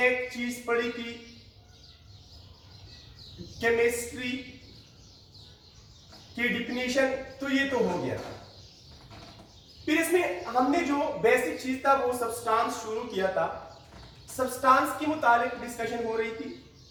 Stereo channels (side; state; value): both; identical; correlation 1.00